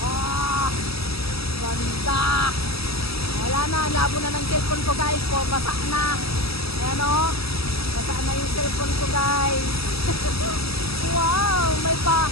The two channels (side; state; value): right; late; 0.77 ms